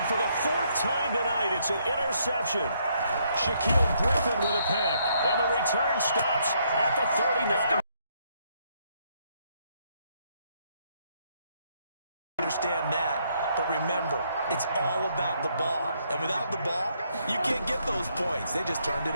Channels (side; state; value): both; inverted; correlation -0.72